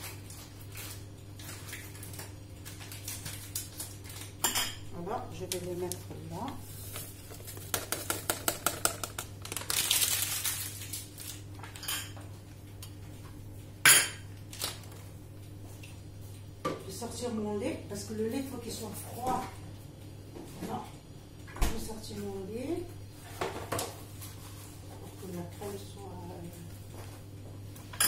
Voilà, je vais le mettre là. Sortir mon lait parce que le lait il faut qu'il soit froid. Voilà. Je vais sortir mon lait pour que la crème soit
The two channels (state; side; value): identical; both; correlation 1.00